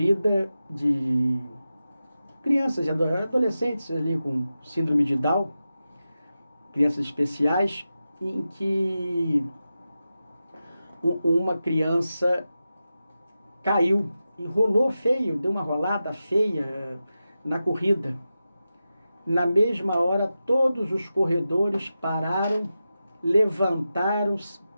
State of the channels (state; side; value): inverted; both; correlation -0.92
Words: de crianças e adolescentes ali com síndrome de Down, crianças especiais, em que uma criança caiu e rolou feio, deu uma rolada feia na corrida. Na mesma hora, todos os corredores pararam, levantaram,